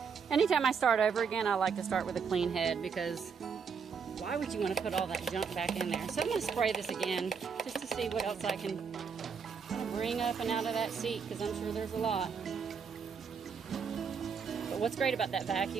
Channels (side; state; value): left; quieter; 6.2 dB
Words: Anytime I start over again, I like to start with a clean head because why would you want to put all that junk back in there? So I'm going to spray this again just to see what else I can kind of bring up and out of that seat because I'm sure there's a lot. But what's great about that